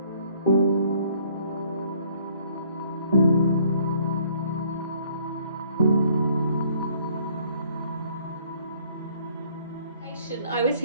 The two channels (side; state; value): both; inverted; correlation -0.62